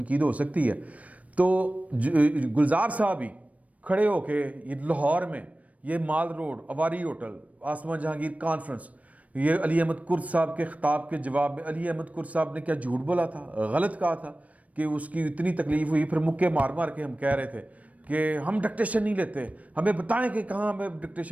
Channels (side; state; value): left; late; 0.068 ms